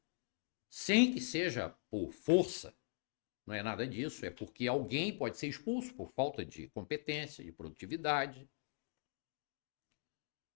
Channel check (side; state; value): right; silent; digital silence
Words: sem que seja por força, não é nada disso, é porque alguém pode ser expulso por falta de competência, de produtividade.